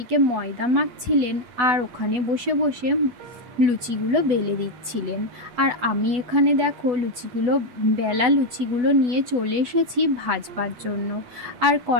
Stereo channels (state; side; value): late; left; 8.1 ms